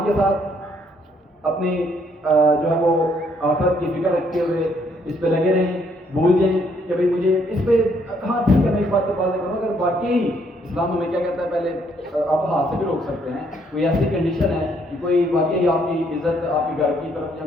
کے ساتھ، اپنی جو ہے وہ آخرت کی فکر رکھتے ہوئے اس پہ لگے رہیں، بھول جائیں کہ بھئی مجھے اس پہ، ہاں ٹھیک ہے میں اس بات پر بات کروں، اگر واقعی اسلام ہمیں کیا کہتا ہے، پہلے آپ ہاتھ سے بھی روک سکتے ہیں، کوئی ایسی کنڈیشن ہے کہ کوئی واقعی آپ کی عزت، آپ کے گھر کی طرف یا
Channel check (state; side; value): normal; both; correlation 0.69